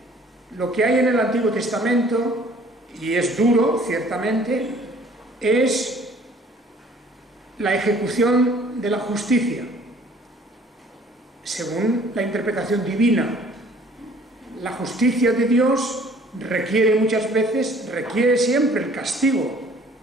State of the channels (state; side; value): normal; both; correlation 0.55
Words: Lo que hay en el Antiguo Testamento, y es duro, ciertamente, es la ejecución de la justicia, según la interpretación divina. La justicia de Dios requiere muchas veces, requiere siempre el castigo,